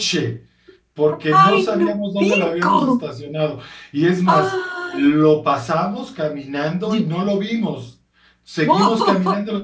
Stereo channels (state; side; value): identical; both; correlation 1.00